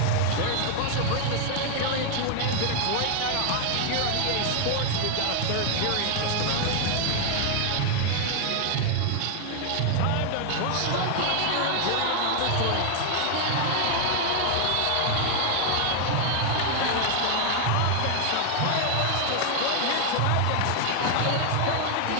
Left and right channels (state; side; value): different; both; correlation 0.00